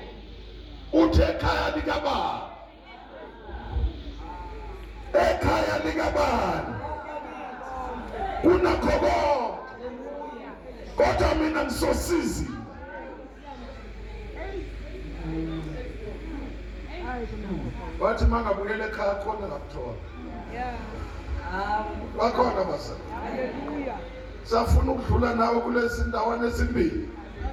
Uthe ekhaya likabani. Ekhaya likabani. Kunakho konke. Kodwa mina ngisosizi. Wathi mangabuyela ekhaya khona ngakuthola. Bakhona basa. Hallelujah. Safuna ukudlula nawe kulezi ndawana ezimbili.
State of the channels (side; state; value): both; identical; correlation 1.00